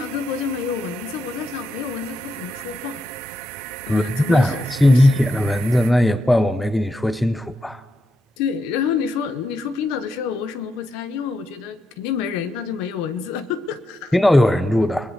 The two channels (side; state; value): both; normal; correlation 0.84